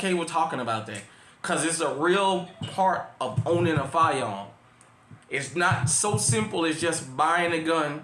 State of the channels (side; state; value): both; identical; correlation 1.00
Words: with talking about that. Because it's a real part of owning a firearm. It's not so simple as just buying a